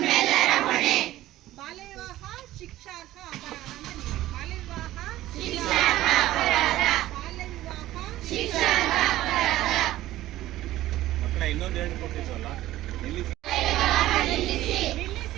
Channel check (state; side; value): quieter; left; 15.2 dB